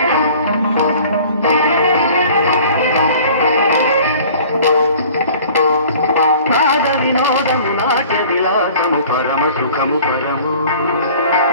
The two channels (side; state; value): both; inverted; correlation -0.48